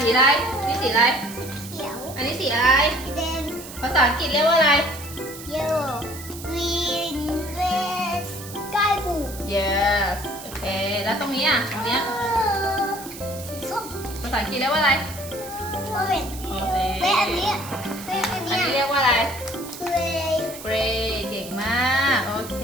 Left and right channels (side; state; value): right; noise; hiss, 14 dB below the sound